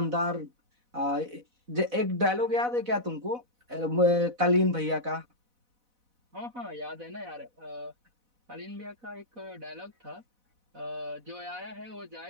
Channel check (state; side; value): late; left; 4.0 ms